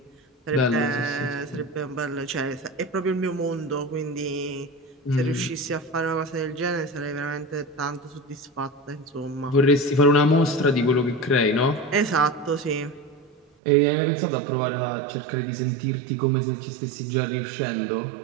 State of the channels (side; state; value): left; drops out; at 13.5 s